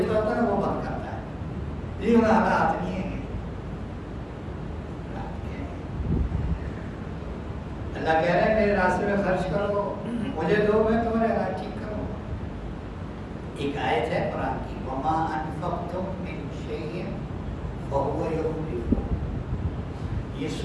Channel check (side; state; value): both; identical; correlation 1.00